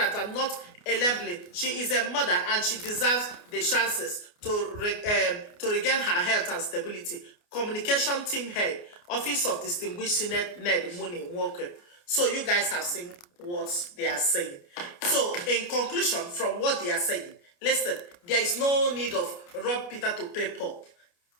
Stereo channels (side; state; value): right; late; 29 ms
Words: and not labeling. She is a mother and she deserves the chances to regain her health and stability. Communication team head, Office of Distinguished Senate Ned Nwoko. So you guys have seen what they are saying. So in conclusion, from what they are saying, listen, there is no need of rob Peter to pay Paul.